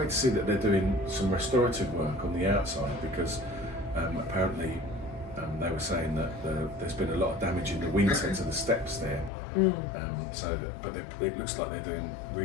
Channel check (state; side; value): drops out; right; at 9.3 s